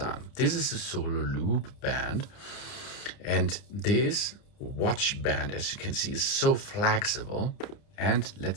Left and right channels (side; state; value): right; late; 30 ms